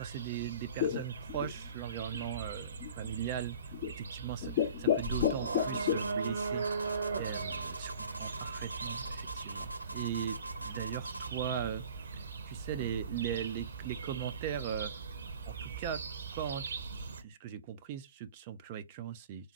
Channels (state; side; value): inverted; both; correlation -0.45